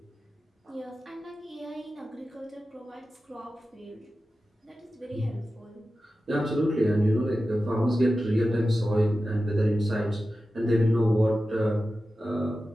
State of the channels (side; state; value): both; normal; correlation 0.93